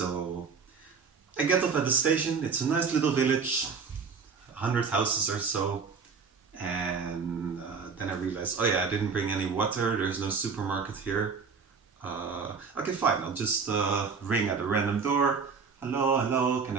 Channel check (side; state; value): left; quieter; 5.4 dB